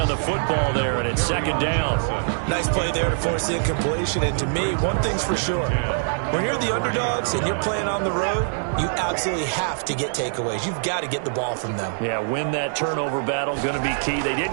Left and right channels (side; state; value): left; silent; digital silence